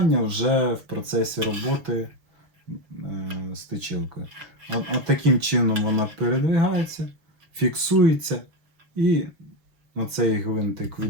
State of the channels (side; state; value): left; late; 6.3 ms